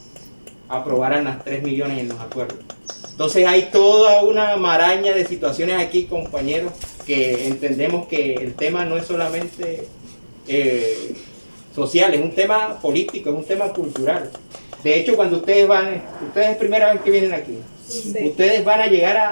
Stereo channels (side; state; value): both; inverted; correlation -1.00